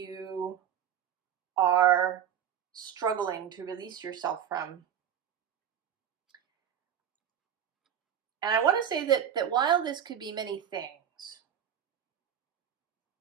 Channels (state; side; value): quieter; left; 9.4 dB